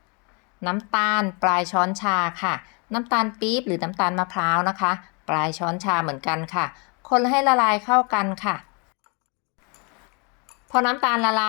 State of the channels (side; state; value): right; quieter; 33.1 dB